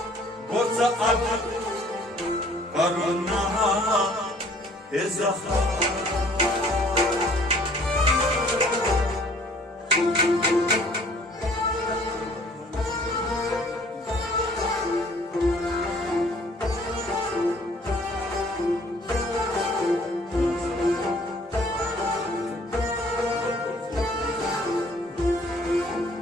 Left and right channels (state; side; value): normal; both; correlation 0.57